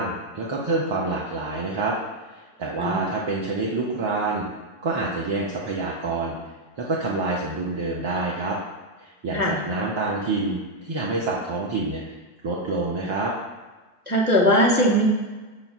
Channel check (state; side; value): late; left; 1.2 ms